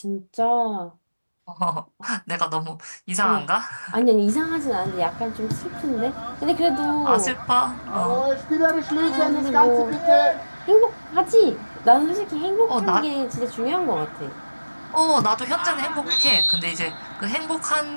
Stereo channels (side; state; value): both; inverted; correlation -1.00